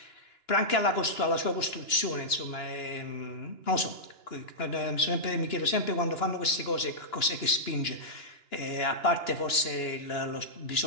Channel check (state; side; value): late; right; 2.9 ms